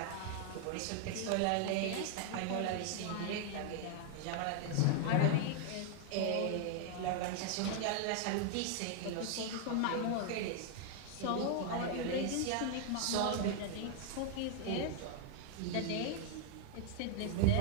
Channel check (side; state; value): both; different; correlation 0.00